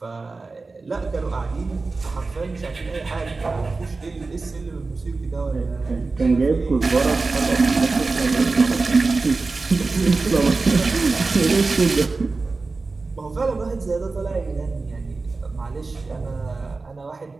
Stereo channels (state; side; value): quieter; left; 3.8 dB